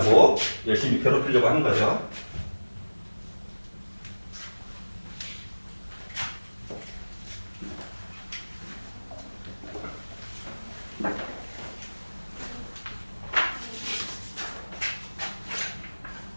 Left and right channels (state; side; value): inverted; both; correlation -1.00